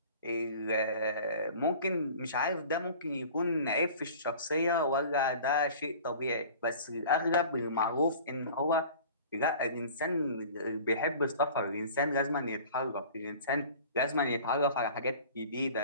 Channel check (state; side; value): inverted; both; correlation -0.43